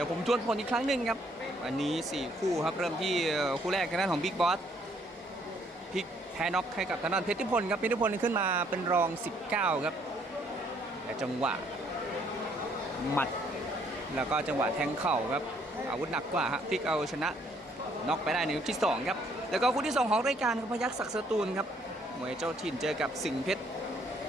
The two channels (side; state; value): both; normal; correlation 0.66